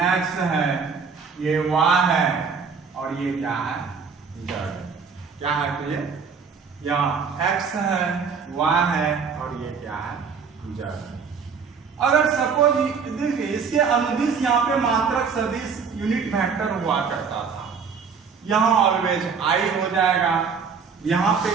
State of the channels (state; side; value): quieter; left; 5.8 dB